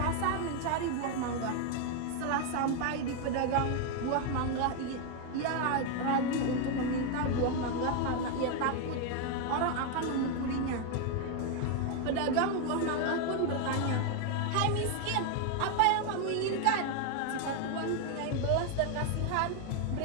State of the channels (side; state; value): both; different; correlation 0.01